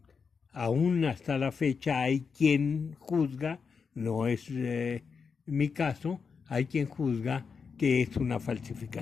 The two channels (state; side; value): quieter; right; 5.6 dB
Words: aún hasta la fecha hay quien juzga, no es mi caso, hay quien juzga que es una